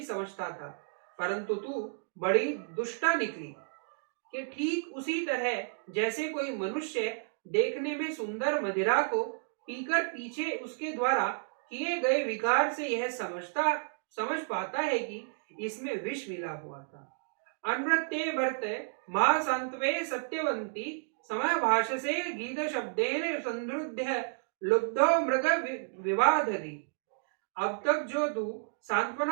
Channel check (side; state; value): left; silent; digital silence